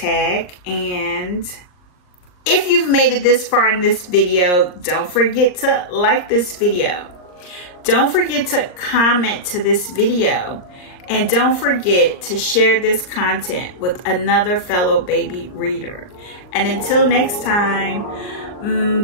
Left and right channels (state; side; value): late; right; 39 ms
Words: And if you've made it this far in this video, don't forget to like this video. Don't forget to comment to this video. And don't forget to share this content with another fellow baby reader. And until next time,